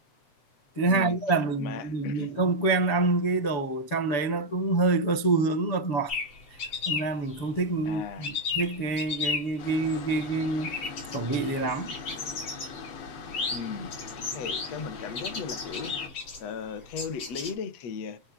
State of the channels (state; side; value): late; right; 7.0 ms